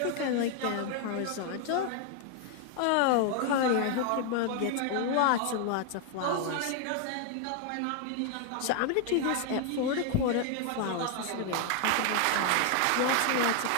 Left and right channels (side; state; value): both; different; correlation 0.00